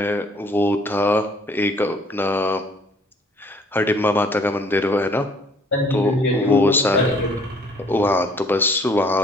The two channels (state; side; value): normal; both; correlation 0.59